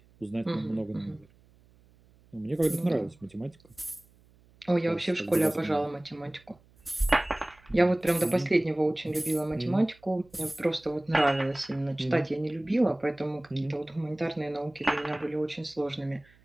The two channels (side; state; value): right; noise; hum, 29 dB below the sound